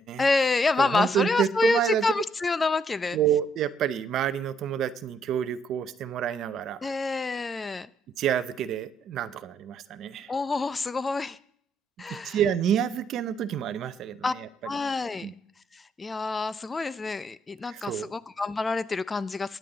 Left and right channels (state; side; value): normal; both; correlation 0.71